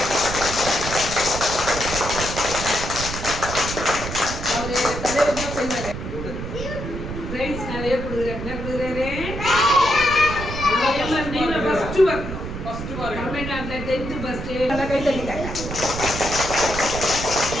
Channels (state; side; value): noise; right; rumble, 7 dB below the sound